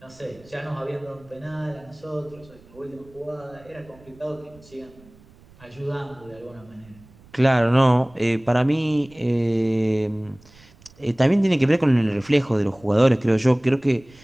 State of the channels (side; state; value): right; noise; rumble, 26 dB below the sound